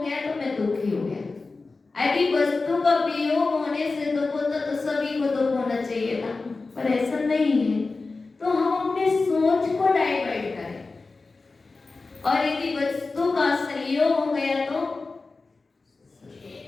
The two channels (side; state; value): right; quieter; 3.8 dB